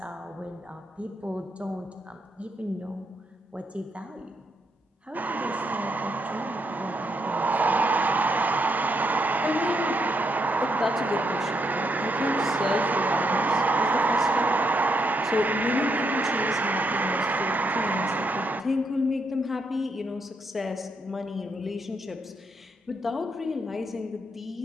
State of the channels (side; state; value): both; normal; correlation 0.78